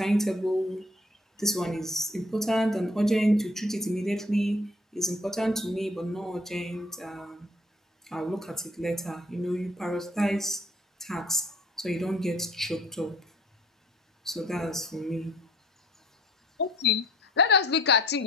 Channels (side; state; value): both; normal; correlation 0.56